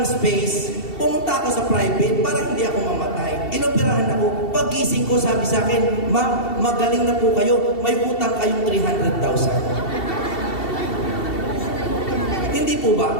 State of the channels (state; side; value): late; right; 2.7 ms